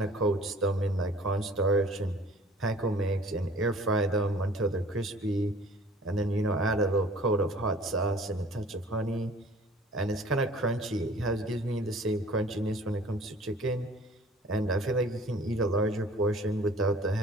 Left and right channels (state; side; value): normal; both; correlation 0.50